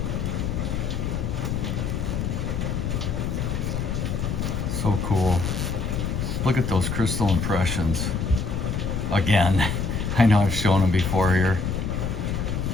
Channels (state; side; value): noise; left; rumble, 1 dB below the sound